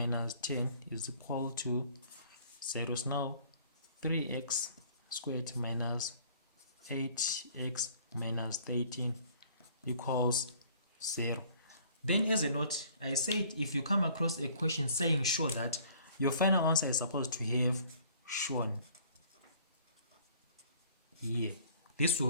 10 is equal to 0. So now 3x squared minus 8x minus 13 equals 0. Then as a note, I said if you come across a question saying show that, your final answer is supposed to have shown here. This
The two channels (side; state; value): both; inverted; correlation -0.55